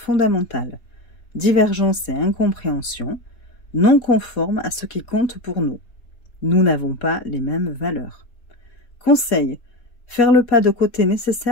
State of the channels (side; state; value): right; late; 3.9 ms